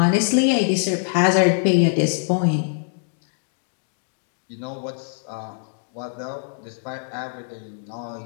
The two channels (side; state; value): right; silent; 63 dB below the other